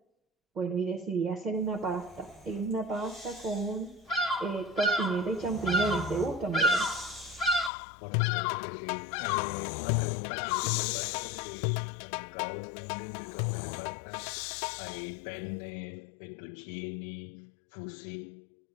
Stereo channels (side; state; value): right; drops out; at 7.7 s